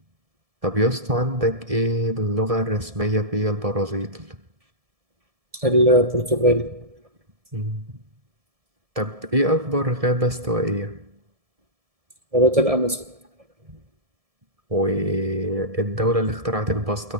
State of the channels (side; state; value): left; late; 1.7 ms